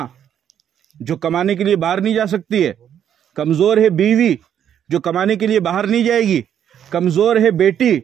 جو کمانے کے لیے باہر نہیں جا سکتی ہے. کمزور ہے بیوی جو کمانے کے لیے باہر نہیں جائے گی. کمزور ہے بیٹی،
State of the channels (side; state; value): left; quieter; 9.4 dB